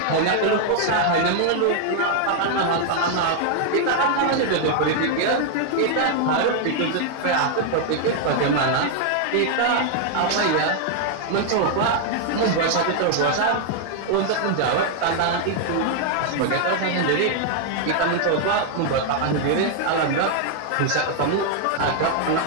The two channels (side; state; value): both; different; correlation 0.00